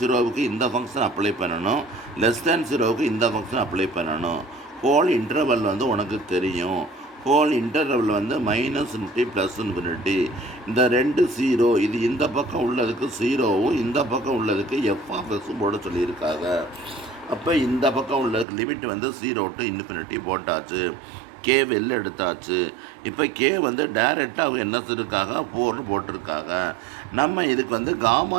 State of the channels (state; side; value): drops out; left; at 18.4 s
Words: இந்த ஃபங்க்ஷன் அப்ளை பண்ணணும், less than 0வுக்கு இந்த ஃபங்க்ஷன் அப்ளை பண்ணணும். ஹோல் இன்டர்வல் வந்து உனக்கு தெரியும். ஹோல் இன்டர்வல் வந்து -∞ +∞. இந்த 2 0, இது இந்த பக்கம் உள்ளதுக்கு 0வும் இந்த பக்கம் உள்ளதுக்கு f(x) போட சொல்லியிருக்காங்க. அப்போ இந்த பக்கம் உள்ளதுக்கு லிமிட் வந்து 0 to ∞ போட்டாச்சு. கே வெளில எடுத்தாச்சு. இப்போ கே வந்து டைரெக்டாக அவங்க என்ன சொல்லியிருக்காங்க, 4ன்னு போட்டிருக்காங்க. நம்ம இதுக்கு வந்து காமா